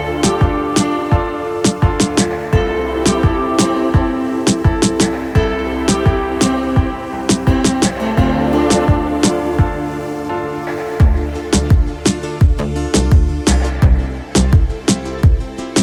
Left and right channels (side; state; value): both; identical; correlation 1.00